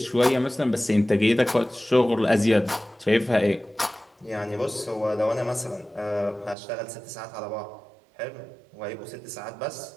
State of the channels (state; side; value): drops out; left; at 6.6 s